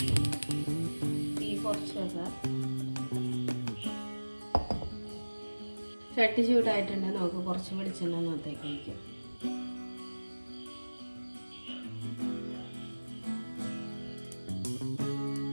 തീ കുറച്ച് വെക്കാം. ചട്ടി ചൂടായിട്ടുണ്ടെങ്കിൽ നമുക്ക് കുറച്ച് വെളിച്ചെണ്ണ അകത്തേക്ക് ഒഴിക്കാം.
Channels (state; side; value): inverted; both; correlation -1.00